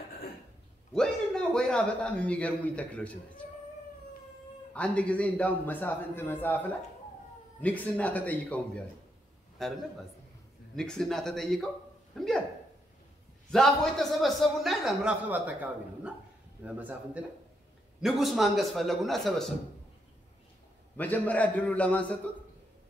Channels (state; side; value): normal; both; correlation 0.80